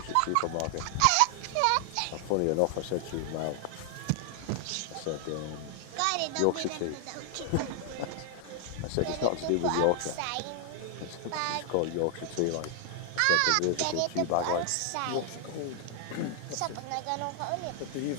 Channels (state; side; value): different; both; correlation 0.00